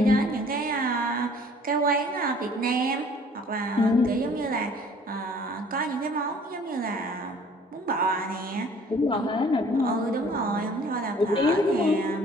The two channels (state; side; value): normal; both; correlation 0.53